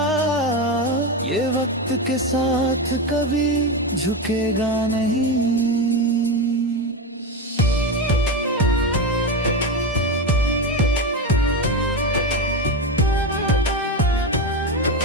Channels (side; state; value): both; normal; correlation 0.16